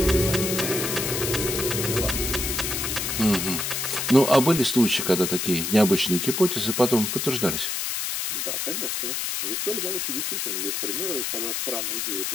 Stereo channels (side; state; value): left; noise; hiss, 2 dB below the sound